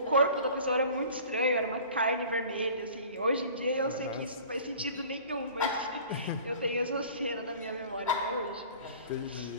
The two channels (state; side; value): inverted; both; correlation -0.45